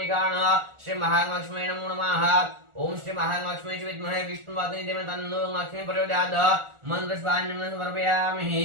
श्री महालक्ष्मी नमो नमः। ओम श्री महालक्ष्मी विद्महे विष्णुवादिनी देवी तन्नो लक्ष्मी प्रचोदयात्। मंत्रपुष्पांजलिं समर्पयामि।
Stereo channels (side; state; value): left; late; 1.4 ms